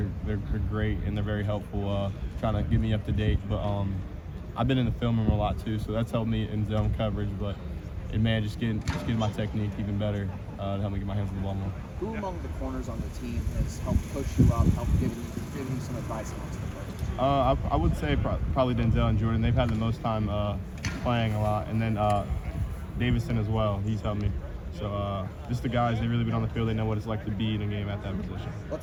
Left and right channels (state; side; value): identical; both; correlation 1.00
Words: great, and they're very helpful, trying to get me up to date. But I've been in the film room a lot too, so that's helped me in zone coverage. But just getting my technique even better to help me get my hands on the ball more. Who among the corners on the team has helped push you up, helped give you some advice amongst the players? I would say probably Denzel and Jordan. They've had the most time playing a lot, and then Davison as well. He's helped me. So just the guys, they've really been on the field. They know what it's like to be in a game at that position.